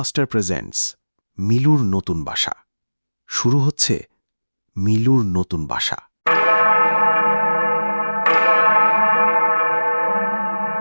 presents মিলুর নতুন বাসা। শুরু হচ্ছে মিলুর নতুন বাসা।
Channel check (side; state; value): both; inverted; correlation -1.00